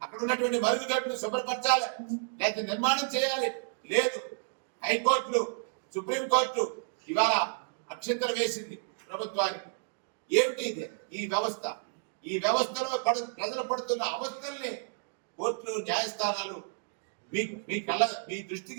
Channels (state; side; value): silent; left; digital silence